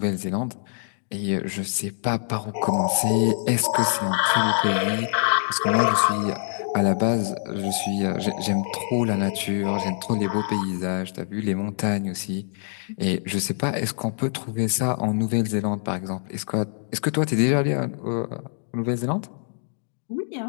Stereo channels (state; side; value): silent; right; digital silence